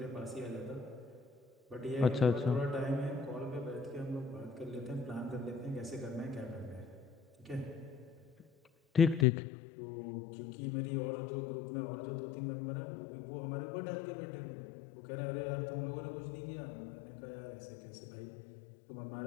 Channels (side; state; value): right; drops out; at 9.2 s